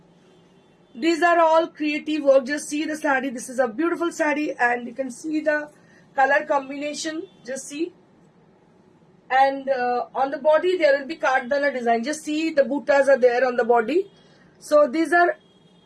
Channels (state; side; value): identical; both; correlation 1.00